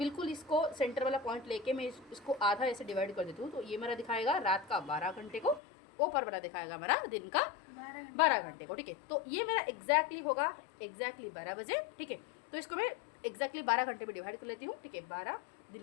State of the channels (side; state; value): right; drops out; at 5.6 s